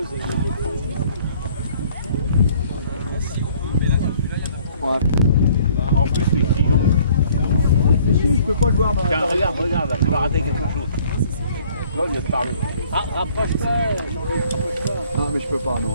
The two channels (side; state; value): both; inverted; correlation -0.58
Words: En plus, les clients. Je peux pas le voir. Tiens, regarde, là, tu vas rater quelque chose. Là, il vient de parler. Ah, rapproche-toi. Non, mais je peux pas,